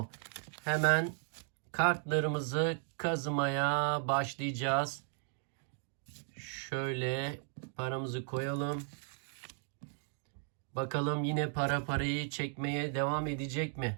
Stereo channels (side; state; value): left; silent; 54 dB below the other